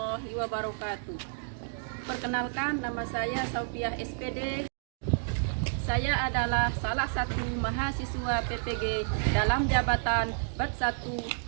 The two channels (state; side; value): silent; left; digital silence